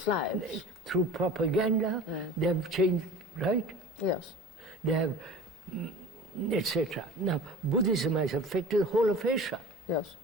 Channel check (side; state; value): both; normal; correlation 0.38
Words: lives. through propaganda, they have changed, right? Yes. They have, etc. Now, Buddhism has affected the whole of Asia. Yes.